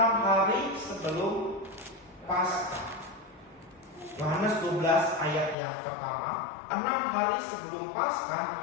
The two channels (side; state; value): right; drops out; at 5.6 s